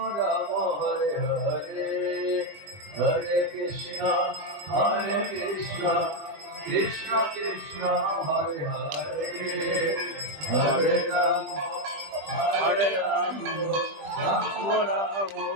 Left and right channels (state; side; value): late; left; 20 ms